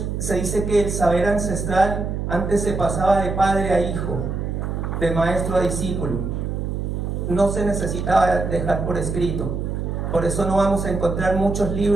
se dice que el saber ancestral antes se pasaba de padre a hijo, de maestro a discípulo. No se necesitaba dejar por escrito. Por eso no vamos a encontrar muchos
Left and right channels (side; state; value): right; noise; hum, 3 dB below the sound